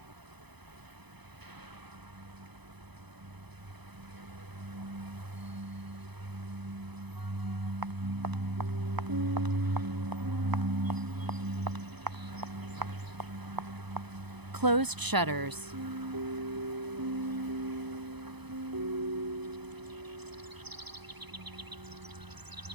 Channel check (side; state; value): left; late; 0.99 ms